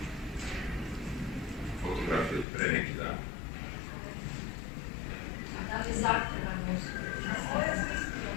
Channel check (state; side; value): drops out; right; at 2.5 s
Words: Fotografije od pre neki dan. A da li zahtevano